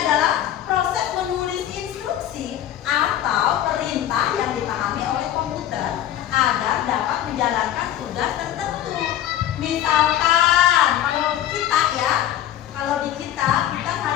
proses menulis instruksi atau perintah yang dipahami oleh komputer agar dapat menjalankan tugas tertentu. Misalkan kalau di kita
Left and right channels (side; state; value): right; quieter; 11.8 dB